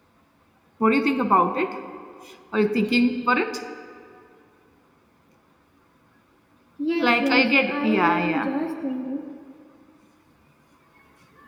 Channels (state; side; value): identical; both; correlation 1.00